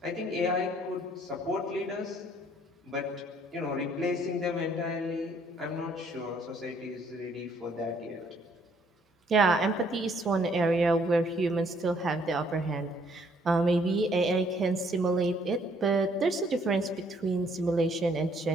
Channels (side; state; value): both; normal; correlation 0.64